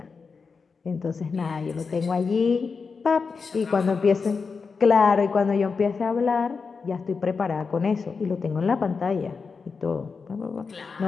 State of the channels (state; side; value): quieter; right; 5.0 dB